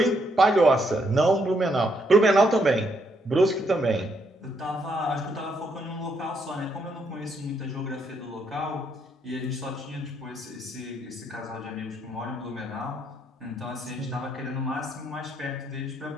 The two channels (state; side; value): normal; both; correlation 0.75